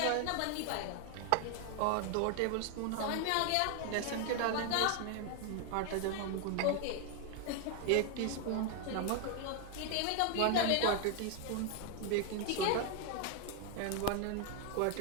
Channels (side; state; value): both; different; correlation 0.00